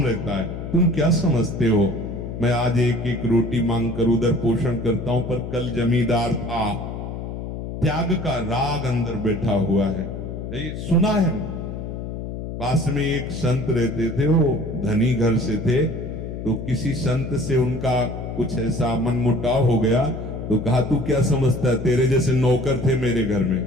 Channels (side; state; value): left; noise; hum, 7 dB below the sound